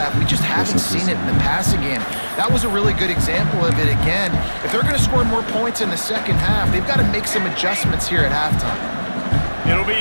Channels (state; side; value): inverted; both; correlation -1.00